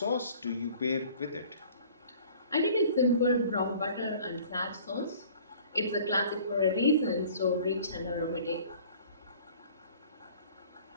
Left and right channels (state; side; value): inverted; both; correlation -0.50